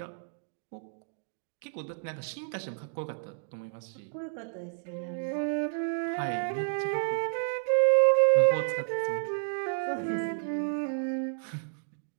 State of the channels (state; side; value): silent; left; digital silence